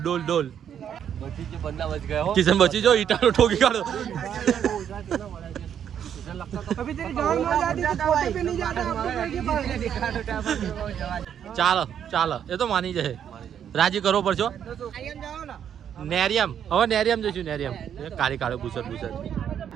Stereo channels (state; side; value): quieter; left; 9.0 dB